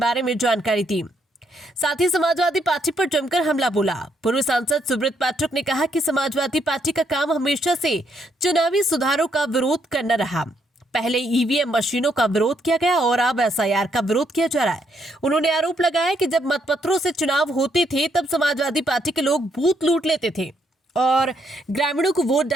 में जानकारी दी। साथ ही समाजवादी पार्टी पर जमकर हमला बोला। पूर्व सांसद सुब्रत पाठक ने कहा कि समाजवादी पार्टी का काम हमेशा से चुनावी सुधारों का विरोध करना रहा। पहले ईवीएम मशीनों का विरोध किया गया और अब एसआईआर का विरोध किया जा रहा है। उन्होंने आरोप लगाया कि जब मतपत्रों से चुनाव होते थे तब समाजवादी पार्टी के लोग बूथ लूट लेते थे और ग्रामीणों को वोट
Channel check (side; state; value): both; normal; correlation 0.74